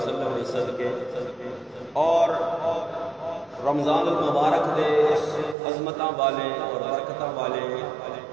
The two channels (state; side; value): drops out; left; at 5.6 s